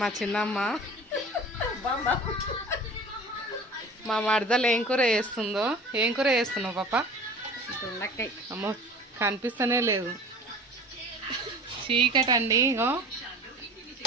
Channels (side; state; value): both; normal; correlation 0.40